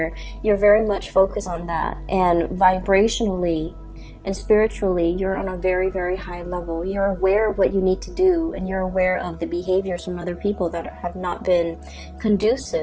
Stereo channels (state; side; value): identical; both; correlation 1.00